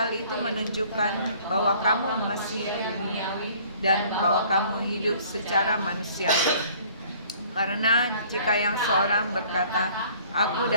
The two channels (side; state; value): both; inverted; correlation -0.55